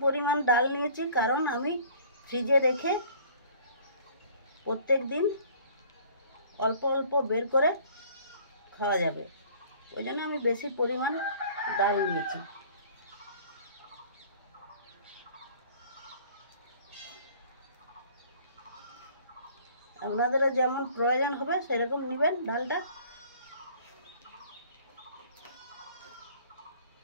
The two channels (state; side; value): inverted; both; correlation -0.52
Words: পরিমাণ ডাল নিয়েছি, কারণ আমি ফ্রিজে রেখে প্রত্যেক দিন অল্প অল্প বের করে খাওয়া যাবে, ওই জন্য আমি বেশি পরিমাণ ডাল নিয়েছি। আপনাদেরও যেমন প্রয়োজন হবে সেরকম নেবেন ডালটা।